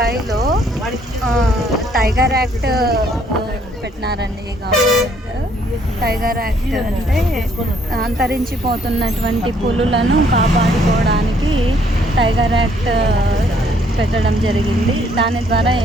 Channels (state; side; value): normal; both; correlation 0.65